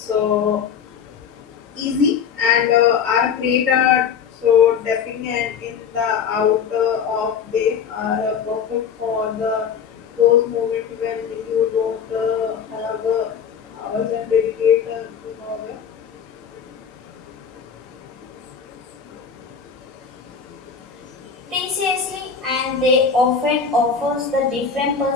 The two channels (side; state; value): right; quieter; 6.8 dB